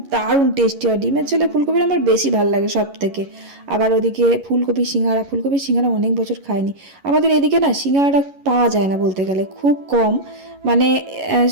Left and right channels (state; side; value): late; left; 11 ms